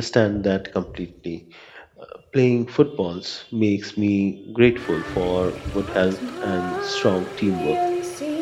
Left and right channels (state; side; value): identical; both; correlation 1.00